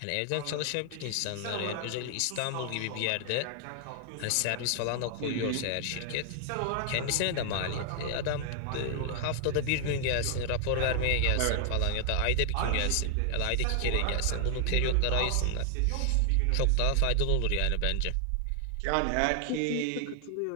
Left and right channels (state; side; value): different; both; correlation 0.00